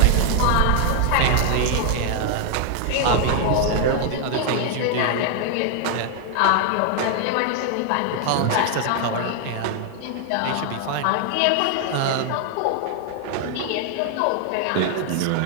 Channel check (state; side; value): different; both; correlation 0.00